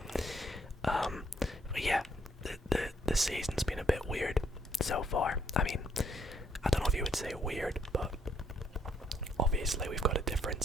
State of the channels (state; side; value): normal; both; correlation 0.70